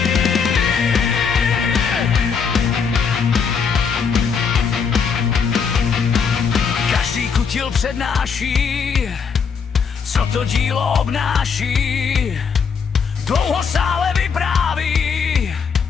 Každý kutil přednáší, co to dílo obnáší. Dlouho sále vypráví,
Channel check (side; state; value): right; quieter; 6.1 dB